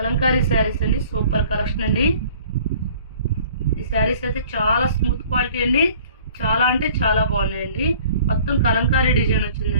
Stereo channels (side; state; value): both; inverted; correlation -0.50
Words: శారీస్ అండి. సూపర్ కలెక్షన్ అండి. ఈ శారీస్ అయితే చాలా స్మూత్ క్వాలిటీ అండి. చాలా అంటే చాలా బాగున్నాయండి. మొత్తం కలంకారీ డిజైన్